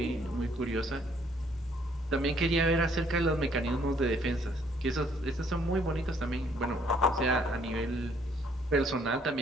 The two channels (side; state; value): both; normal; correlation 0.65